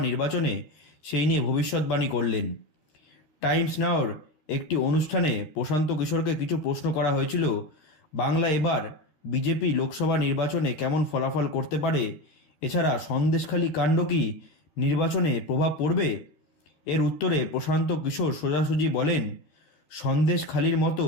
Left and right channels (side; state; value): right; late; 13 ms